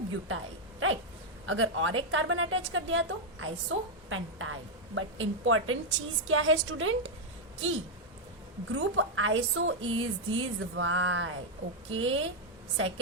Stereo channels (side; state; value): both; normal; correlation -0.01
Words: राइट. अगर और एक कार्बन अटैच कर दिया तो आइसोपेंटाइल. बट इंपॉर्टेंट चीज क्या है स्टूडेंट कि group iso is this why, okay.